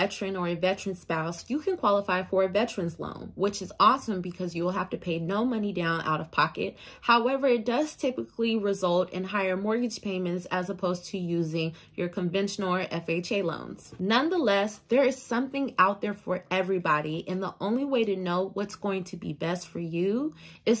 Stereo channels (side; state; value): both; identical; correlation 1.00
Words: or a veteran spouse, you can qualify for a veteran's loan, which is awesome because you will have to pay no money down out of pocket. However, it does typically result in higher mortgage payments as opposed to using your conventional or FHA loans. Nonetheless, there is something out there for everybody, and the only way to know what's going to be best for you